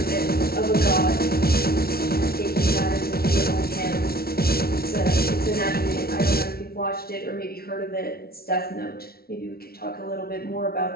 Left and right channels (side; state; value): right; late; 0.44 ms